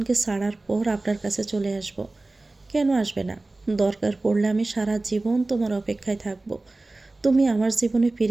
ছাড়ার পর আপনার কাছে চলে আসব। কেন আসবে না? দরকার পড়লে আমি সারা জীবন তোমার অপেক্ষায় থাকব। তুমি আমার জীবনে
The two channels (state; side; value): quieter; left; 3.1 dB